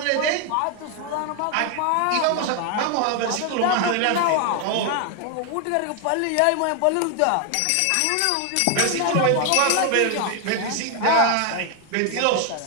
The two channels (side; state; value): both; different; correlation 0.01